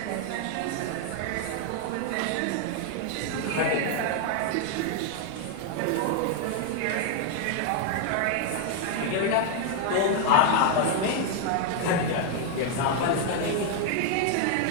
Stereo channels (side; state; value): both; different; correlation 0.00